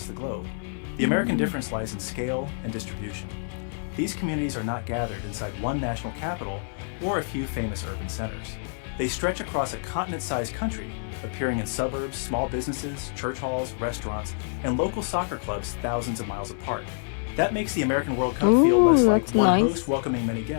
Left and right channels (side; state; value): right; silent; digital silence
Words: the globe. The American difference lies in scale and distribution. These communities are not gathered inside one national capital or a few famous urban centers. They stretch across a continent-sized country, appearing in suburbs, small businesses, church halls, restaurants, and local soccer clubs thousands of miles apart. That makes the American World Cup feel Ooh, less like that's one nice. host welcoming many